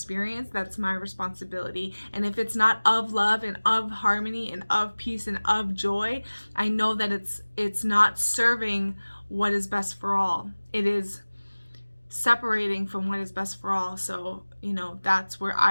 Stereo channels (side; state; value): both; inverted; correlation -1.00